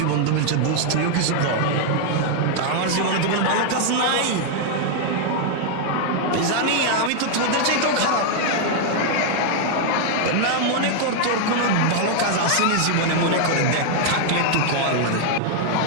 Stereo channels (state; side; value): different; both; correlation 0.00